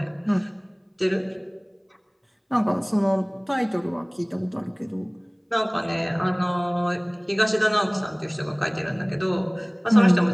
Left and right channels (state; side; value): identical; both; correlation 1.00